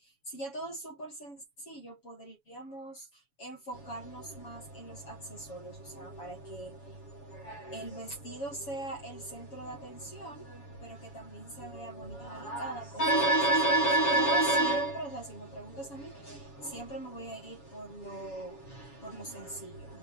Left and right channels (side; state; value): right; late; 7.1 ms